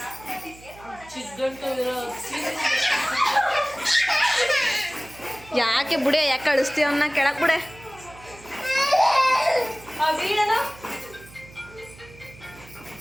ಯಾಕೆ ಬುಡೆ ಯಾಕೆ ಕಳಿಸ್ತೀವಿ ಅವನ್ನ ಕೆಳಕ್ ಬುಡೆ.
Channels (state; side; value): noise; right; hum, 21 dB below the sound